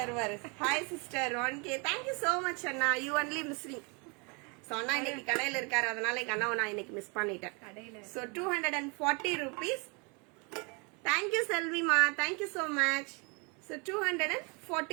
வருவாரு. Hi sister 1K. Thank you so much அண்ணா. You only missing. ஸோ அண்ணா இன்னைக்கு கடையில இருக்காரு, அதனால எங்க அண்ணாவை நான் இன்னைக்கு மிஸ் பண்ணிட்டேன். So 240 rupees. தேங்க்யூ செல்விமா, thank you so much. So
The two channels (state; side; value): quieter; left; 32.2 dB